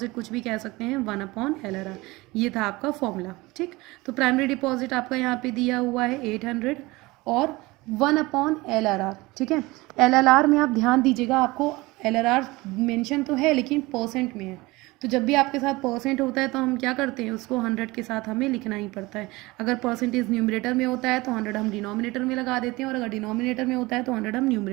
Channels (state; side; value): quieter; left; 21.7 dB